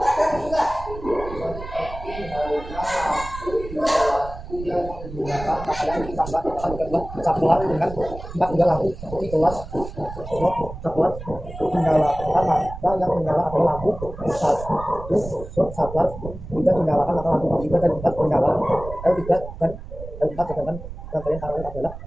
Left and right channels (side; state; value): right; noise; rumble, 12 dB below the sound